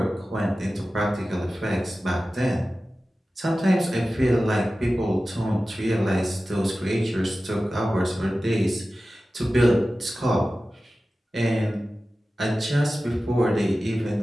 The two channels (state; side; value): normal; both; correlation 0.95